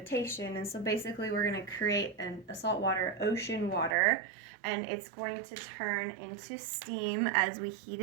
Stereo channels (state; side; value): drops out; left; at 4.0 s